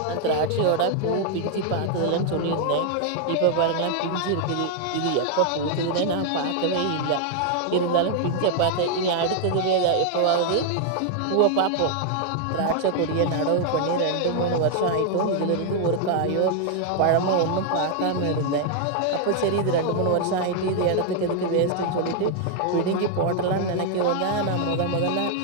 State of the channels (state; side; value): different; both; correlation 0.00